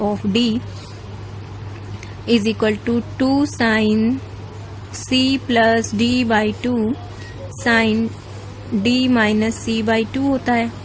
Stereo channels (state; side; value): identical; both; correlation 1.00